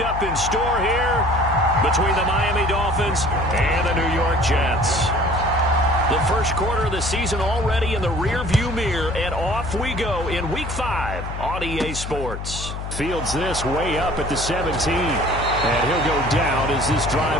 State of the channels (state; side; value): noise; left; hum, 7 dB below the sound